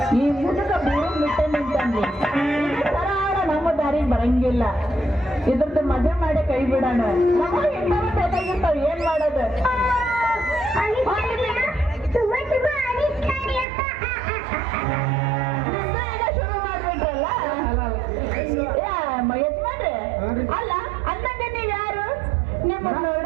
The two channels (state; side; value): drops out; left; at 13.7 s